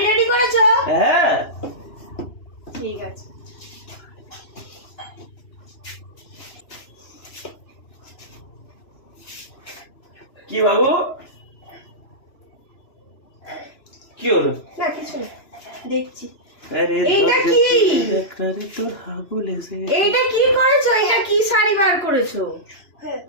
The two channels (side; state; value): right; late; 2.9 ms